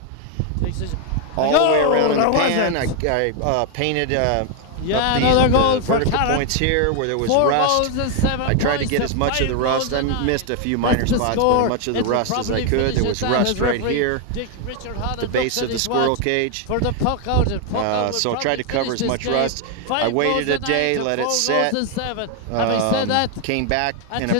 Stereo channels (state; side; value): different; both; correlation 0.01